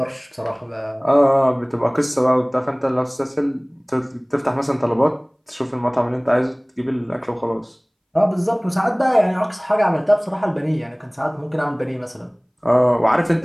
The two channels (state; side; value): identical; both; correlation 1.00